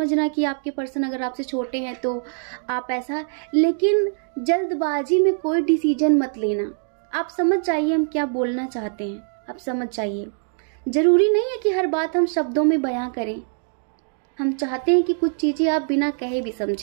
कि आपके पर्सन अगर आपसे छोटे हैं तो आप ऐसा, लेकिन जल्दबाजी में कोई डिसीजन मत लेना। आप समझ जाइए हम क्या बोलना चाहते हैं, आप समझ जाइए। जरूरी नहीं है कि हर बात हम शब्दों में बयां करें, हम चाहते हैं कि कुछ चीजें आप बिना कहे भी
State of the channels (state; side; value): silent; left; 63 dB below the other